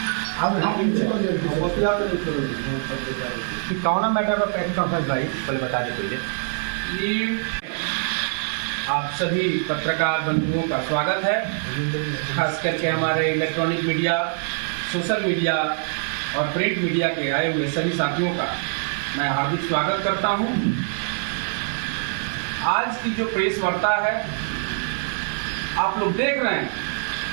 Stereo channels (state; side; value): silent; left; 63 dB below the other